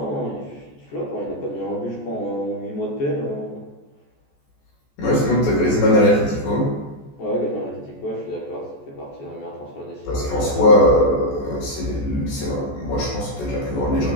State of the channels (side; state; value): right; late; 14 ms